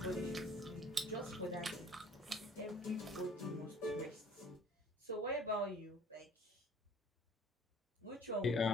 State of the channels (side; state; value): both; normal; correlation 0.52